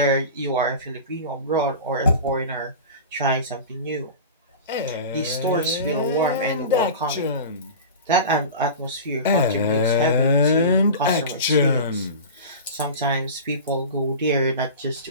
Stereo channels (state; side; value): inverted; both; correlation -0.32